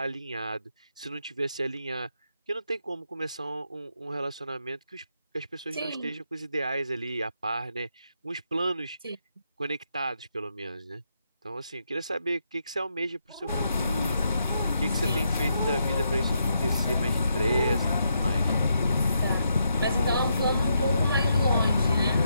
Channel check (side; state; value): both; inverted; correlation -0.80